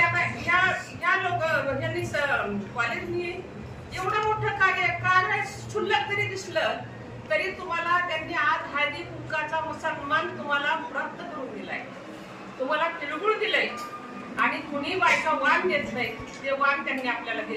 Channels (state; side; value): identical; both; correlation 1.00